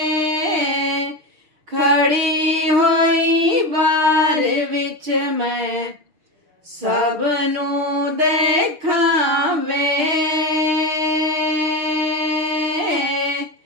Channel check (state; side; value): late; left; 6.6 ms